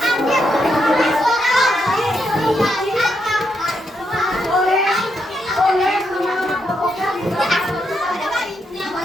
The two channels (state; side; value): normal; both; correlation 0.80